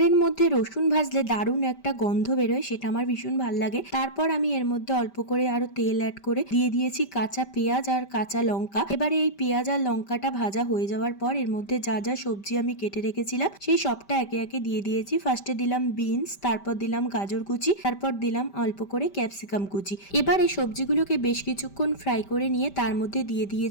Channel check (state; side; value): late; right; 5.1 ms